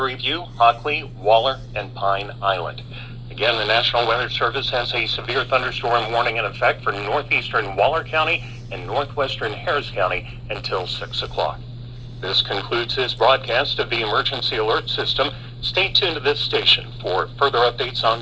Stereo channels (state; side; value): identical; both; correlation 1.00